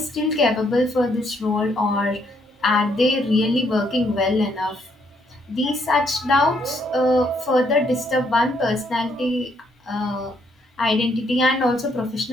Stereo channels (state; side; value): normal; both; correlation 0.71